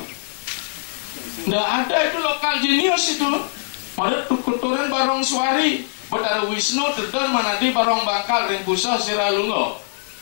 Nggak ada itu lokal jenius itu. Pada tukuturan barong suari, Betara Wisnu tedon manadi barong bangkal ring pusah siralungo.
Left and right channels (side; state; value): right; silent; digital silence